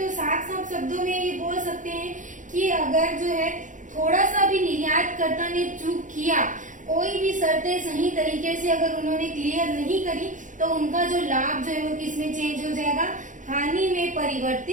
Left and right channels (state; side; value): late; left; 0.37 ms